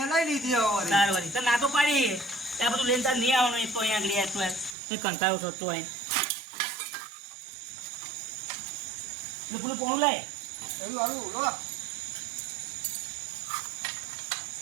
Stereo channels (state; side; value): drops out; left; at 4.8 s